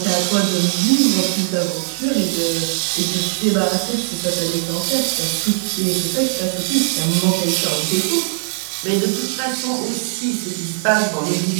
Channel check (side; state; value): left; silent; digital silence